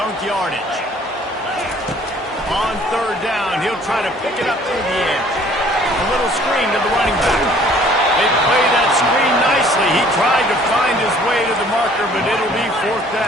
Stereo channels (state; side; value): normal; both; correlation 0.56